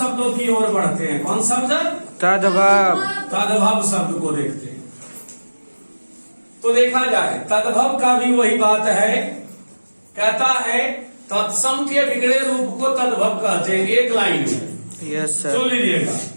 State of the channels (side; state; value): both; inverted; correlation -1.00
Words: की ओर बढ़ते हैं। कौन शब्द? तद्भव। तद्भव शब्द को देखते हैं। तो देखा जाए, तद्भव का भी वही बात है, कहता है तत्सम के बिगड़े रूप को तद्भव कहते हैं। एक लाइन में यस सुन सर। लीजिएगा,